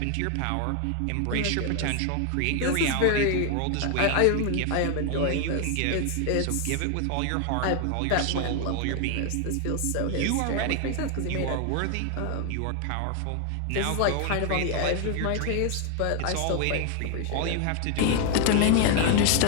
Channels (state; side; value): different; both; correlation 0.00